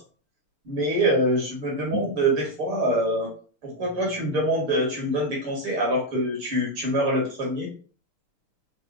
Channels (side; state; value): left; late; 6.8 ms